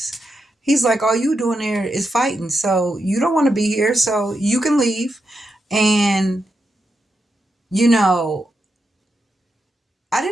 He's like, all you doing there is fighting, so you don't want to be here, so you can leave. And you know I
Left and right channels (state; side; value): normal; both; correlation 0.85